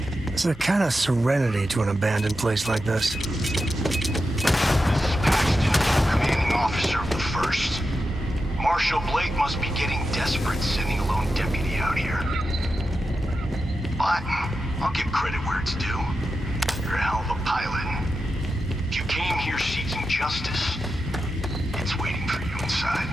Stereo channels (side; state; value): both; normal; correlation 0.90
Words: There's a kind of serenity to an abandoned place like this. This is Paxton, commanding officer of the 1st. Marshal Blake must be getting desperate sending a lone deputy out here. But I'll give credit where it's due. You're a hell of a pilot. If you came here seeking justice, it's waiting for you inside.